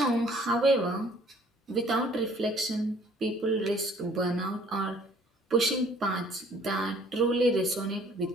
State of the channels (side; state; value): both; normal; correlation 0.57